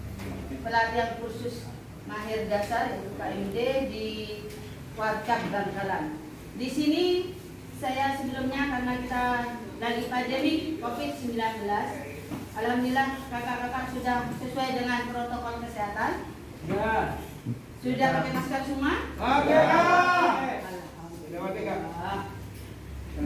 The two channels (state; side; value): identical; both; correlation 1.00